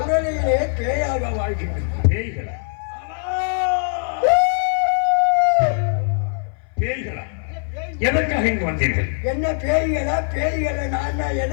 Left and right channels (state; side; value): silent; right; 59 dB below the other